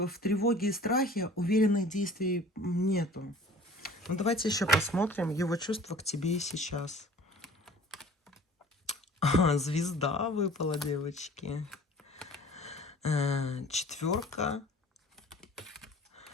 тревоге и страхе, уверенных действий нету. Ну, давайте еще посмотрим его чувства к тебе и сейчас. Звезда выпала, девочки. Четверка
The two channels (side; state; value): both; normal; correlation 0.47